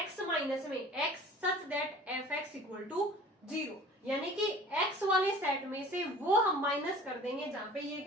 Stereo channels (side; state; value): both; normal; correlation 0.45